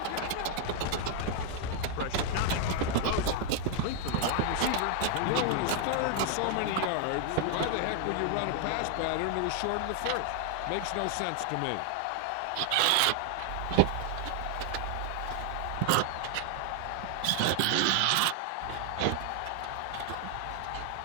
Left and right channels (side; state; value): both; different; correlation 0.00